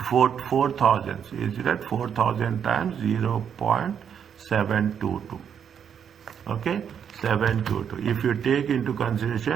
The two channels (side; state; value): left; quieter; 8.0 dB